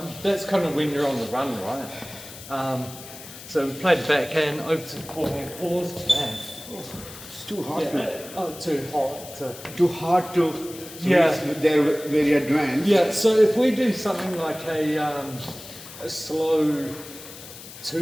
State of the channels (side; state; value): left; noise; hiss, 15 dB below the sound